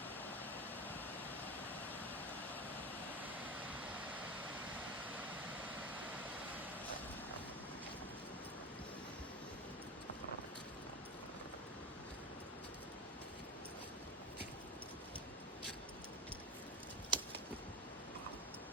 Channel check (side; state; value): both; normal; correlation 0.25